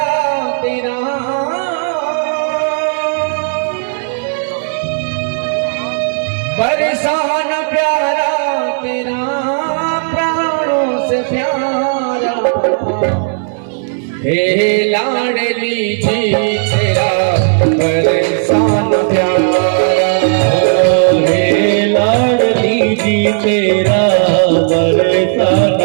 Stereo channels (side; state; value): left; silent; digital silence